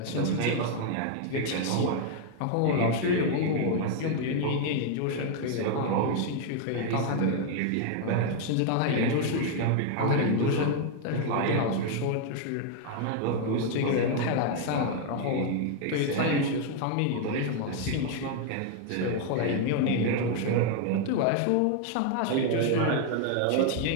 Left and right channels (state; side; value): different; both; correlation 0.00